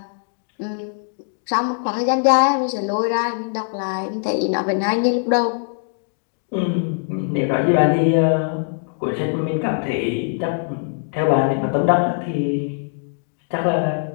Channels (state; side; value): silent; right; 65 dB below the other